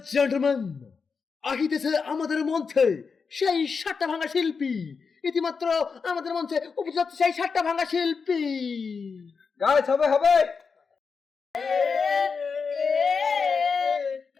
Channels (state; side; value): quieter; right; 5.3 dB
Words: gentlemen, আহিতেছে আমাদের মঞ্চে সেই সাতটা ভাঙা শিল্পী। ইতিমাত্র আমাদের মঞ্চে উপস্থিত সেই সাতটা ভাঙা শিল্পী। গাইস হবে হবে